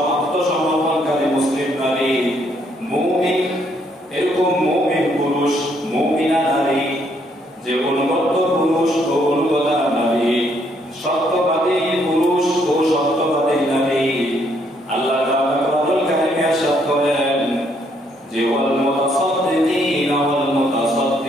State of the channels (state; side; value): normal; both; correlation 0.70